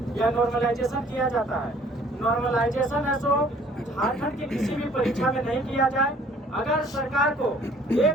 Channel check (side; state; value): both; normal; correlation 0.56